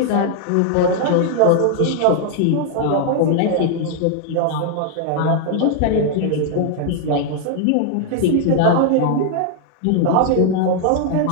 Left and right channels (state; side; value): different; both; correlation 0.00